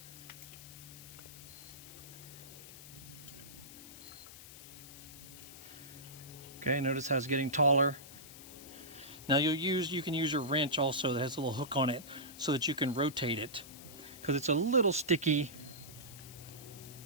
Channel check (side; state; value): left; noise; hiss, 15 dB below the sound